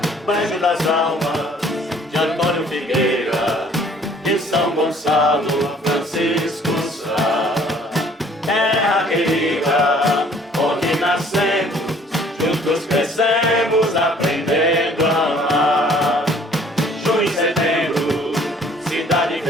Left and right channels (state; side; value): normal; both; correlation 0.57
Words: Banjo das almas de Antônio Figueira, de São Gonçalo, Francisco Sá. Terra querida, onde nascemos, juntos crescemos, aprendendo a amar. Junho e setembro, cidade